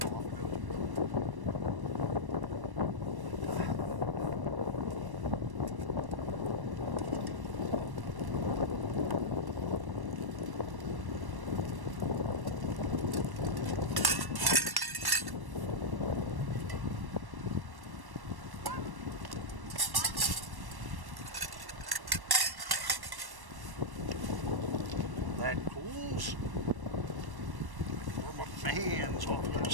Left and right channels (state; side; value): late; left; 1.1 ms